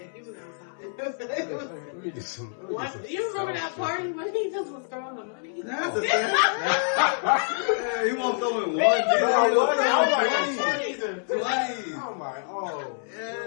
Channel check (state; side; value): silent; right; 60 dB below the other